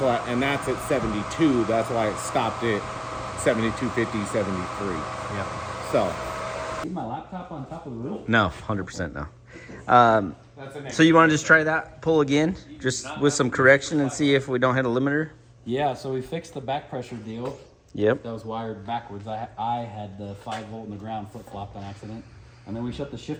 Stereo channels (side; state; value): both; identical; correlation 1.00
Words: and that's at 72. That's why it stopped at 72.50, 73. Yeah. So. Leave my laptop on top of the roof? No, 100% no. That's a So you want to just try that pull again, just with some correction, and see if we don't hit a limiter? Yeah, so we fixed the back pressure deal. Yep. That was wired backwards. I had the 5 volt in the ground flip-flopped on accident. And then we shut the